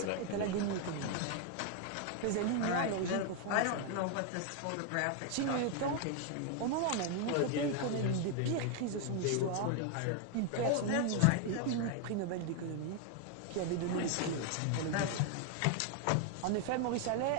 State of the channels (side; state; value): both; different; correlation 0.00